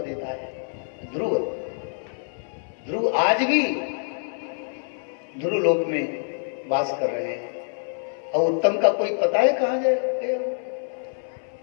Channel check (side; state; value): right; silent; 61 dB below the other